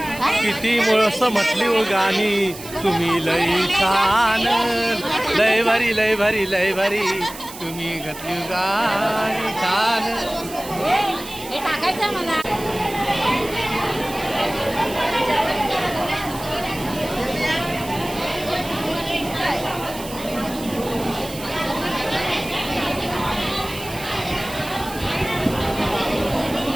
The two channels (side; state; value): right; noise; hiss, 14 dB below the sound